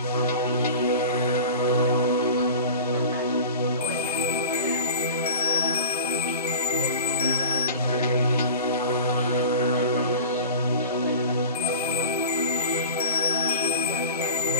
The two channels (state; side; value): inverted; both; correlation -0.38